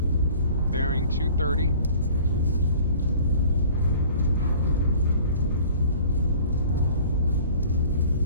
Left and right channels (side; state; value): both; inverted; correlation -0.49